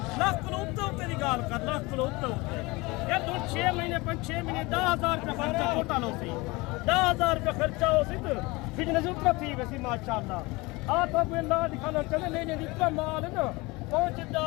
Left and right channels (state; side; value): quieter; right; 23.7 dB